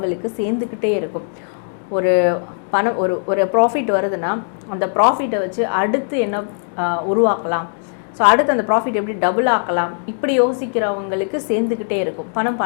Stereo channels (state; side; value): silent; right; digital silence